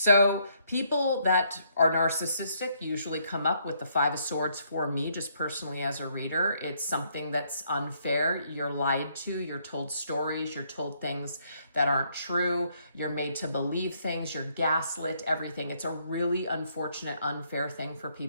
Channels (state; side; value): inverted; both; correlation -0.70